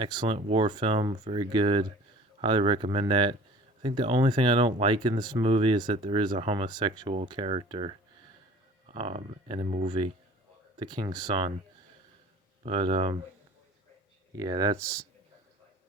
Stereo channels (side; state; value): both; normal; correlation 0.46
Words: war film, very good. Highly recommend that. I think the only thing I don't like in this movie is that there is a homosexual character in the movie, the King's Son. But yeah, that's